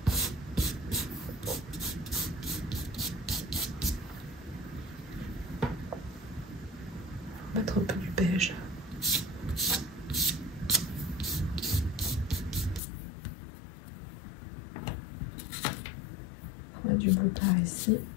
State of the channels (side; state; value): right; drops out; at 12.8 s